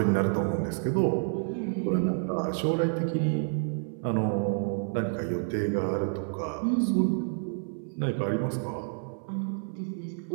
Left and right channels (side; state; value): left; silent; 59 dB below the other